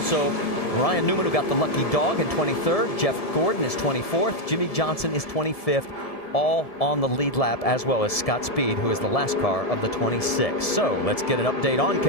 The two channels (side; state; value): right; late; 1.7 ms